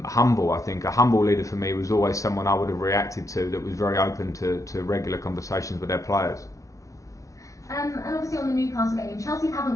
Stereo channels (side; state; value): right; late; 0.16 ms